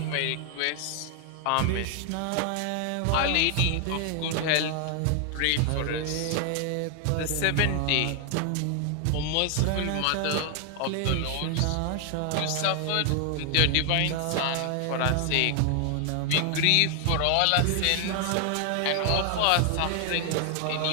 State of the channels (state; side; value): different; both; correlation 0.00